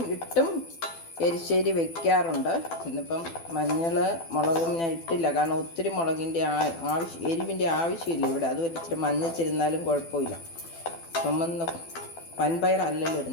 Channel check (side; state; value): right; late; 12 ms